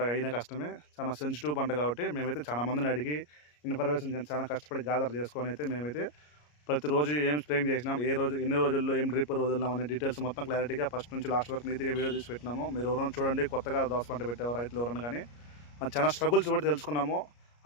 అయినా కష్టమే. చాలా సెన్సిటివ్ పంట కాబట్టి మేమైతే చాలా మందిని అడిగి ఇన్ఫర్మేషన్ చాలా కష్టపడి గ్యాదర్ చేసుకొని అయితే మేమైతే ప్రతిరోజు ఏం స్ప్రేయింగ్ చేసినాం, ఏ రోజు ఎన్ని రోజుల్లో ఏం డ్రిప్ వదిలినాం అనే డీటెయిల్స్ మొత్తం క్లారిటీగా ఫస్ట్ నుంచి లాస్ట్ వరకు నీట్గా వీడియో తీసి పెట్టినాము. మీరు ఎవరైనా చూడండి, కొత్తగా దోస పంట పెట్టేవారు రైతులు ఎవరైనా కానీ చాలా స్ట్రగుల్స్ పడి తెలుసుకున్నాము.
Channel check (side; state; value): right; late; 34 ms